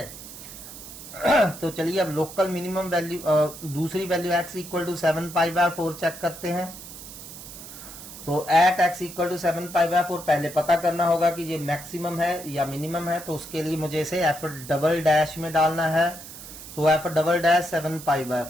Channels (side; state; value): right; noise; hiss, 14 dB below the sound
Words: तो चलिए अब लोकल मिनिमम वैल्यू, दूसरी वैल्यू x = 7π/4 चेक करते हैं। तो एट x = 7π/4 पहले पता करना होगा कि ये मैक्सिमम है या मिनिमम है। तो उसके लिए मुझे इसे f' में डालना है। तो f'